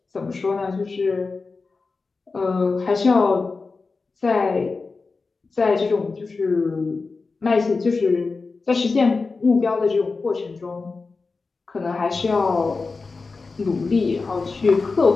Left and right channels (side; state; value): right; quieter; 4.1 dB